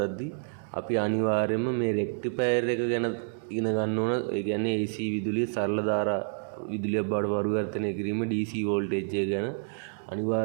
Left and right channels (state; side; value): silent; left; 59 dB below the other